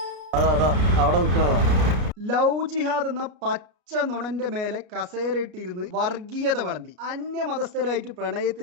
ലവ് ജിഹാദ് എന്ന പച്ച നുണന്റെ മേലെ കസേരയിട്ടിരുന്ന് വർഗീയത വിളമ്പി അന്യമതസ്ഥരായിട്ട്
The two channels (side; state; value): left; late; 33 ms